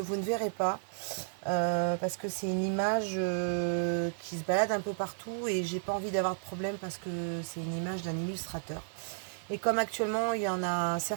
ne verrez pas parce que c'est une image qui se balade un peu partout et j'ai pas envie d'avoir de problème parce que c'est une image d'un illustrateur. Et comme actuellement, il y en a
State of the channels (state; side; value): silent; left; 56 dB below the other